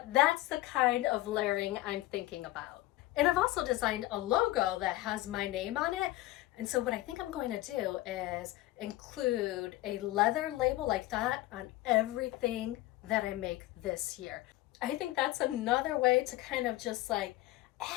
that's the kind of layering I'm thinking about. And I've also designed a logo that has my name on it. And so what I think I'm going to do is include a leather label like that on everything that I make this year. I think that's another way to kind of just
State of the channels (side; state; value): right; quieter; 17.4 dB